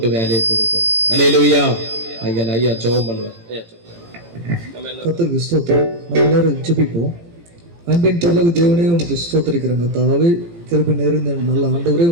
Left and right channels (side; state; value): left; late; 18 ms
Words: வேலையை கொடுக்கணும். அல்லேலூயா. ஐயா ஜெபம் பண்ணுவார். ஐயா கர்த்தருக்கு ஸ்தோத்திரம். நம்ம எல்லாரும் ஜெபிப்போம். அன்பின் பரலோக தேவனே உமக்கு ஸ்தோத்திரிக்கிறோம். கர்த்தாவே கிருபை நிறைந்த நல்ல ஆண்டவரே